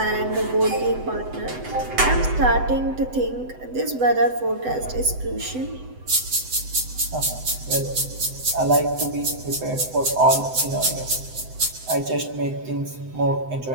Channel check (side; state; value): left; late; 7.9 ms